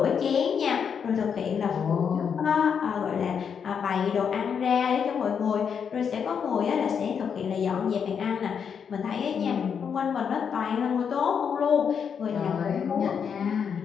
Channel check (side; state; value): right; quieter; 7.0 dB